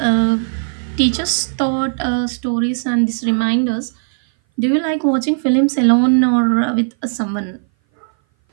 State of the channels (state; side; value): silent; left; 59 dB below the other